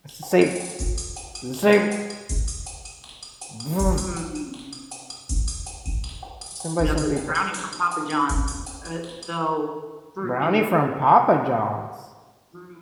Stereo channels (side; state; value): both; identical; correlation 1.00